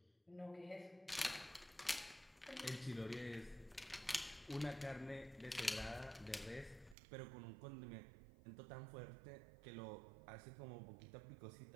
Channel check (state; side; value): drops out; left; at 7.0 s